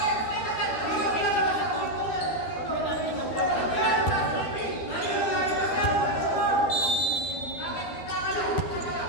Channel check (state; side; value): late; right; 12 ms